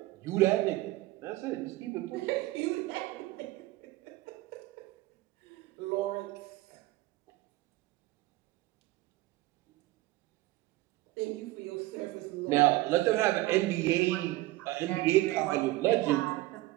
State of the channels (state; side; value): quieter; left; 18.2 dB